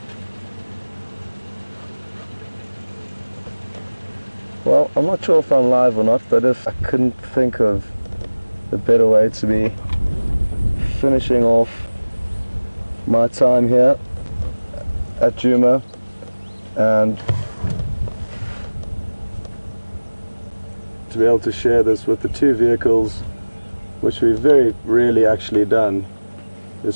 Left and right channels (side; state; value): both; inverted; correlation -1.00